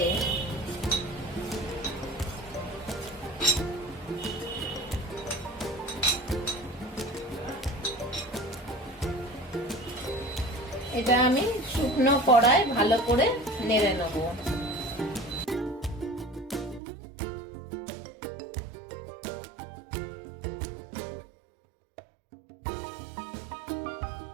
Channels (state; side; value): drops out; left; at 16.8 s